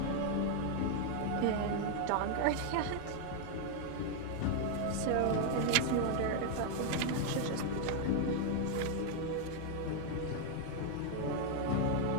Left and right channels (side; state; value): both; different; correlation 0.00